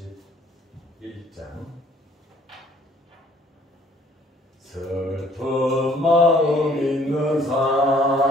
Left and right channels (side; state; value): both; normal; correlation 0.59